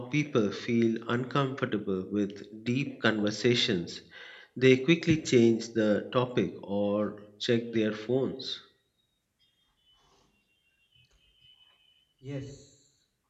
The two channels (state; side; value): identical; both; correlation 1.00